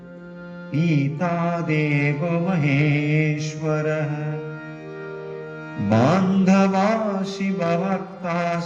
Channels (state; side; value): identical; both; correlation 1.00